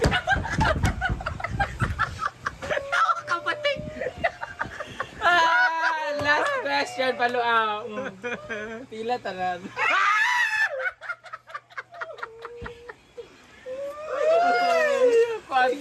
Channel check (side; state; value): both; identical; correlation 1.00